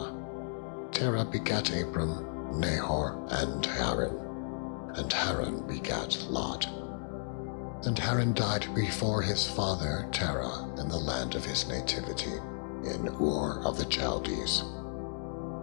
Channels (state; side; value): silent; right; digital silence